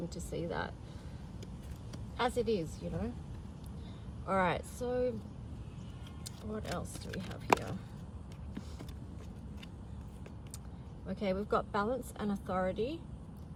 to see that as it is, you know. All right, so what else do we have here? Okay, we've got balance and authority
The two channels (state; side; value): identical; both; correlation 1.00